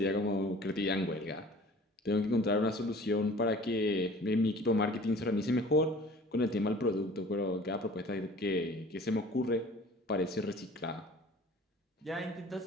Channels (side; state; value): both; normal; correlation 0.47